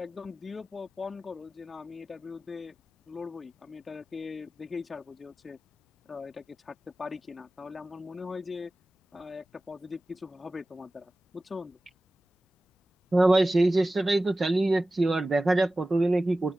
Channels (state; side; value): normal; both; correlation 0.96